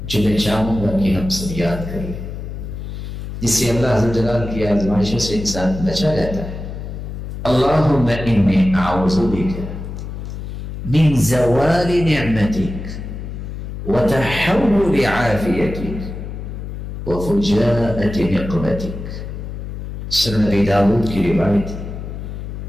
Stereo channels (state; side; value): noise; left; hum, 8 dB below the sound